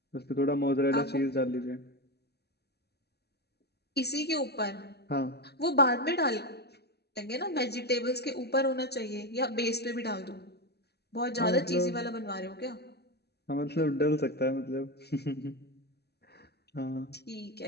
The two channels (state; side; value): late; right; 0.47 ms